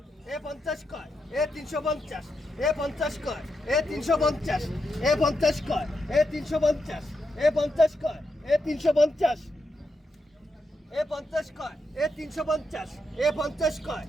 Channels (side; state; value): both; normal; correlation 0.84